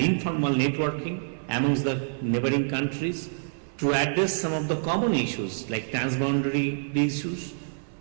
informal networking amongst the neighboring countries to address some of the common issues like transboundary issues,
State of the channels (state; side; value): silent; left; 58 dB below the other